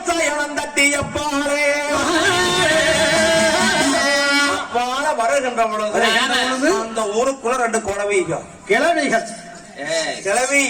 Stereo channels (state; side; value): identical; both; correlation 1.00